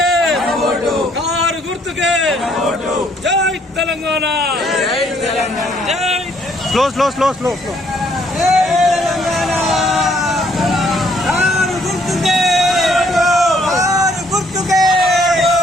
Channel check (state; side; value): normal; both; correlation 0.66